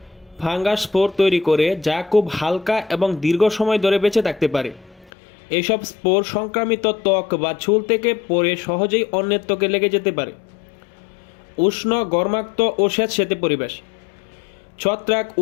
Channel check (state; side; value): drops out; right; at 5.1 s